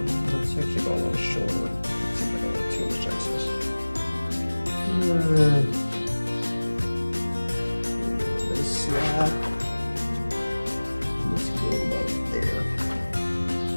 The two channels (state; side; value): inverted; both; correlation -1.00